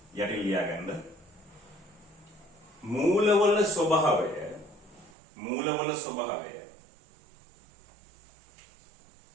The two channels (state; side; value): drops out; left; at 5.1 s